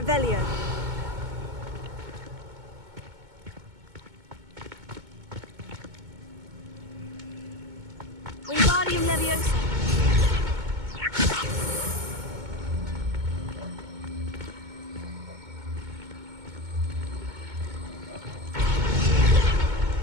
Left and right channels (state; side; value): late; left; 2.2 ms